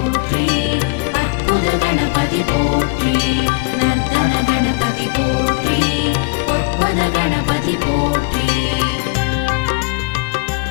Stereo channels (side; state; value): right; quieter; 30.4 dB